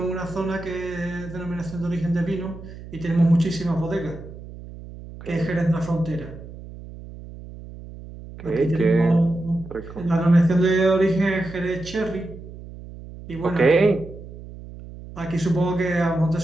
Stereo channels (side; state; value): right; noise; hum, 15 dB below the sound